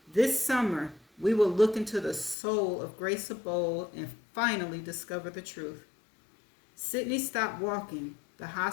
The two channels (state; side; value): drops out; right; at 2.4 s